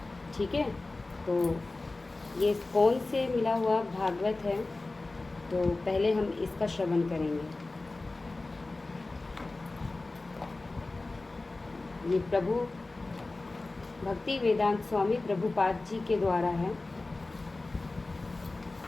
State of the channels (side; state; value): right; quieter; 3.2 dB